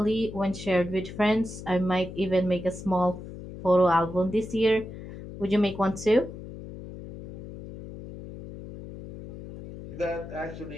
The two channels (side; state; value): left; noise; hum, 12 dB below the sound